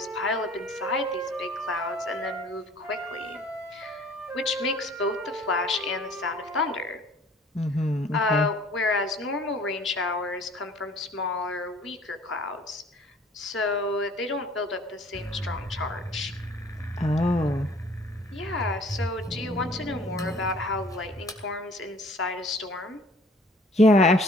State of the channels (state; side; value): normal; both; correlation 0.53